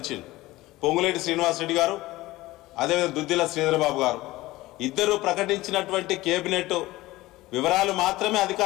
పొంగులేటి శ్రీనివాసరెడ్డి గారు, అదేవిధంగా దుద్దిల శ్రీధరబాబు గారు ఇద్దరు ప్రకటించినటువంటి కేబినెట్ వివరాలు మాత్రమే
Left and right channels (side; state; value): right; quieter; 18.4 dB